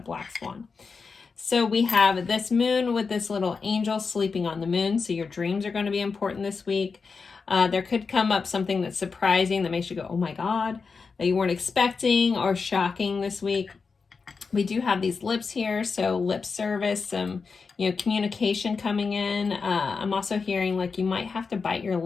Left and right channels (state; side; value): quieter; right; 5.0 dB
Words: black swan. So we have this moon with this little angel sleeping on the moon. So your dreams are going to be important this week. There could come up something that's surprising that makes you go, oh my God, that you weren't expecting, or shocking this week. We do have these lips here, so lip service, some, communication coming in. I'm also hearing like you might have to bite your